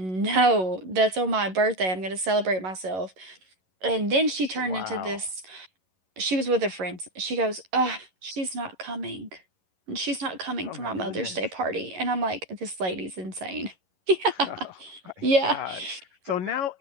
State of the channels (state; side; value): late; left; 11 ms